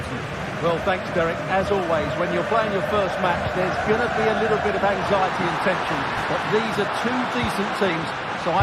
Well, thanks, Derek. As always, when you're playing your first match, there's going to be a little bit of anxiety and tension. But these are two decent teams, so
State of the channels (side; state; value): both; identical; correlation 1.00